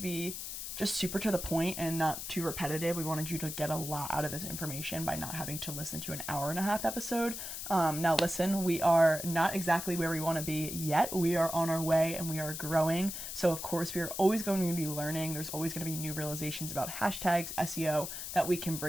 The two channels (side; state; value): left; noise; hiss, 7 dB below the sound